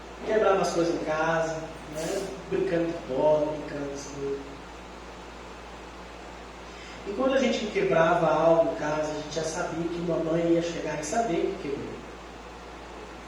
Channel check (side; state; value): both; identical; correlation 1.00